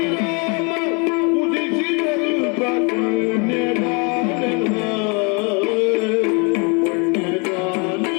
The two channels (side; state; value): right; quieter; 32.3 dB